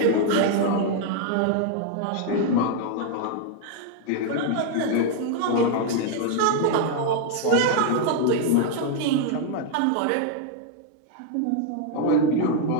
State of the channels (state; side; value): different; both; correlation 0.00